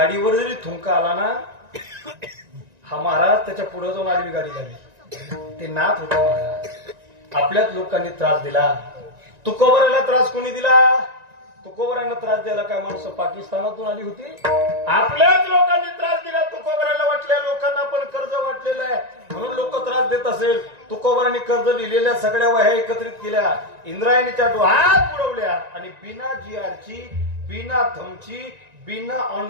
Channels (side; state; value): left; late; 1.9 ms